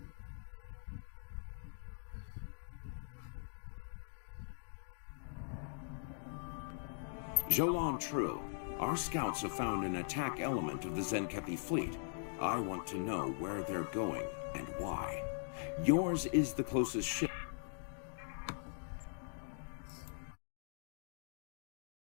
Jolan True, our scouts have found an attack element of the Zenkepi fleet. I want to know where they're going and why. Yours is the closest ship.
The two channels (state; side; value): silent; right; digital silence